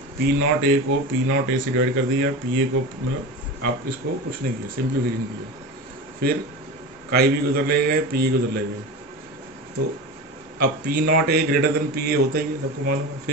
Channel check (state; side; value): normal; both; correlation 0.27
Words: पी नॉट ए को पी नॉट ए से डिवाइड कर दिया, पी ए को मतलब आप इसको कुछ नहीं किया, सिंप्लीफिकेशन किया, फिर काई भी को उधर ले गए, पी ए को उधर ले गए। तो अब पी नॉट ए ग्रेटर देन पी ए होता ही है, सबको मालूम है।